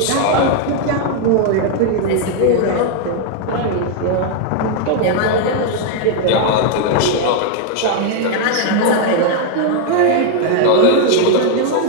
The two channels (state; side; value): different; both; correlation 0.00